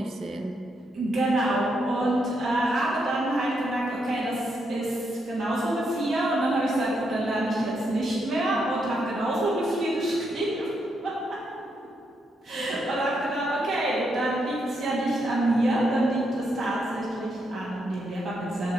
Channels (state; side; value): normal; both; correlation 0.79